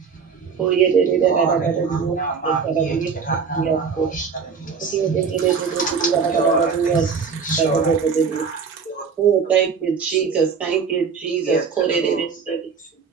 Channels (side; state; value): left; quieter; 5.9 dB